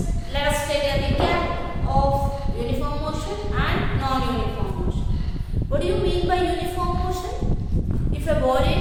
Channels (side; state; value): both; identical; correlation 1.00